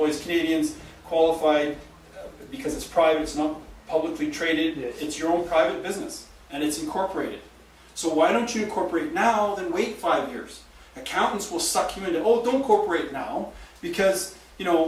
Canadians, qualified because it's private, it's not publicly traded, Yes. It's your own private business and it's incorporated. So why don't you incorporate now, then wait 5 years? Accountants will suck you into, oh, don't incorporate now because,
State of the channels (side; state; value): both; identical; correlation 1.00